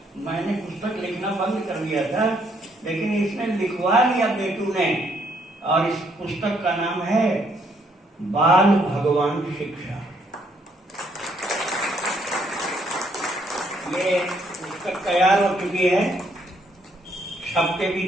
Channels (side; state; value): both; normal; correlation 0.70